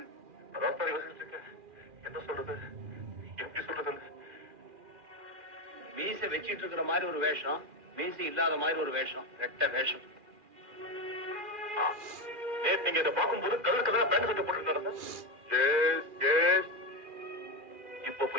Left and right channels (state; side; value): late; left; 2.4 ms